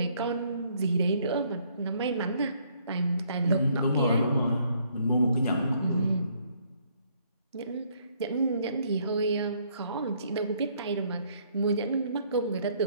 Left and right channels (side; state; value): both; inverted; correlation -0.67